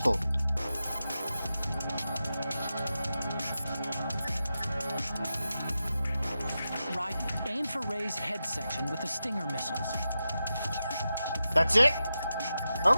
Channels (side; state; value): both; inverted; correlation -0.91